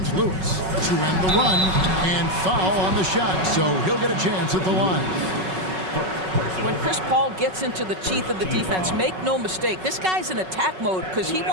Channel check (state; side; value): late; left; 5.4 ms